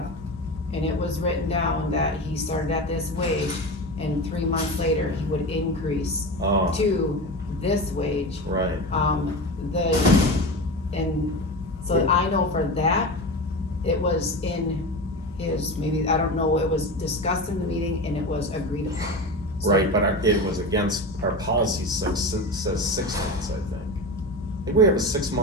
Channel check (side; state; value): both; normal; correlation 0.25